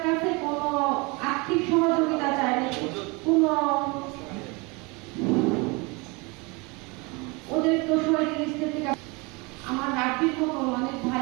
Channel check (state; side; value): quieter; left; 27.7 dB